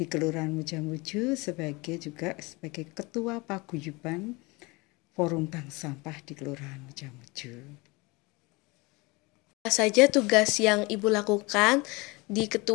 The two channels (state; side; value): quieter; right; 25.3 dB